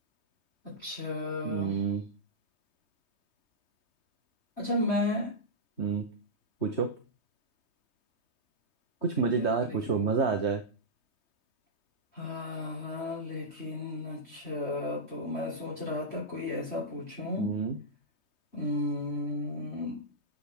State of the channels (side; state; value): right; late; 3.2 ms